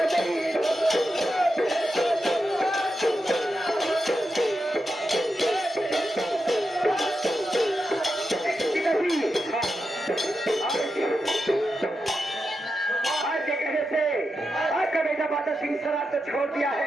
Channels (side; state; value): both; normal; correlation 0.88